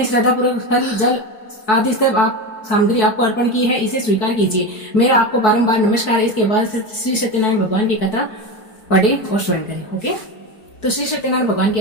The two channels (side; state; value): right; late; 4.6 ms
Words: श्रद्धा पूर्वक फल, जल आदि सब आप सामग्री आपको अर्पण की है, इसे स्वीकार कीजिए। मेरा आपको बारंबार नमस्कार है। इसके बाद श्री सत्यनारायण भगवान की कथा पढ़े और स्वयं करें। ओके। तो श्री सत्यनारायण भगवान की